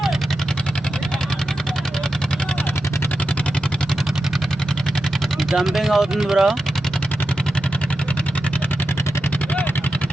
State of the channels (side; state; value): both; normal; correlation 0.90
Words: జంపింగ్ అవుతుంది బ్రో.